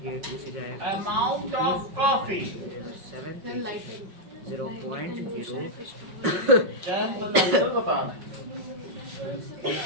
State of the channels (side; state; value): left; late; 5.6 ms